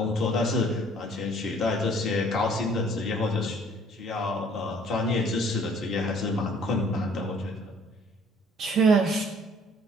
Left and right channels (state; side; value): normal; both; correlation 0.57